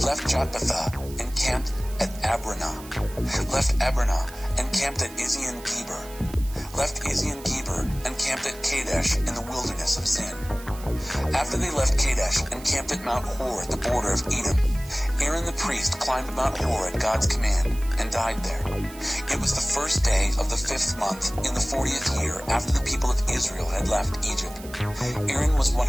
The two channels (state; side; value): noise; right; hiss, 18 dB below the sound